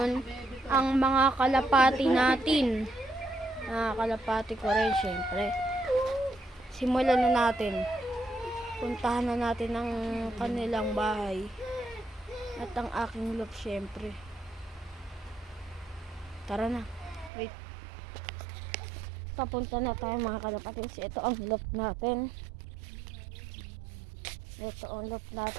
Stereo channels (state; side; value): drops out; left; at 17.3 s